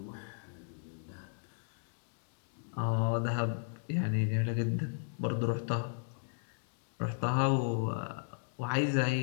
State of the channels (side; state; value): right; silent; digital silence